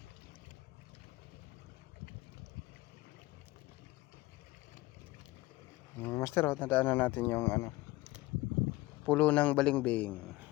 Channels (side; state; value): right; quieter; 19.7 dB